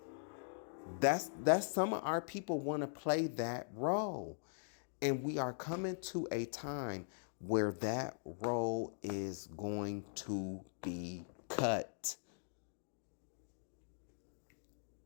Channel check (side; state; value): right; silent; digital silence